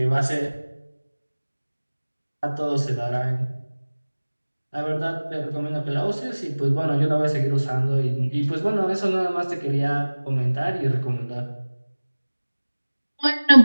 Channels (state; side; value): inverted; both; correlation -1.00